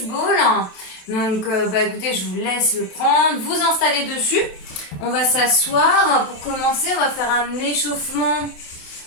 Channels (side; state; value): right; late; 27 ms